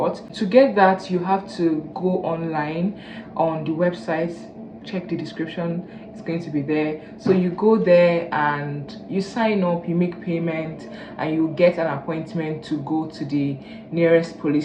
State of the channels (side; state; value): both; identical; correlation 1.00